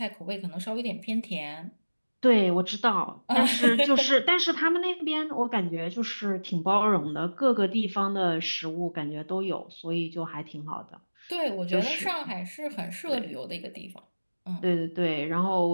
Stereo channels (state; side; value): inverted; both; correlation -1.00